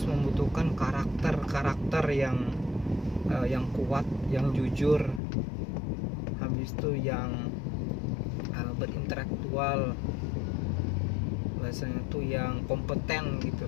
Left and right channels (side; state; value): right; drops out; at 5.2 s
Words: membutuhkan karakter yang kuat, yang jujur, habis itu yang berintelektual, bahasanya tuh yang kompeten